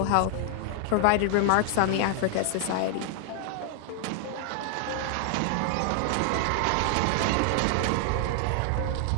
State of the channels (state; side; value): different; both; correlation 0.00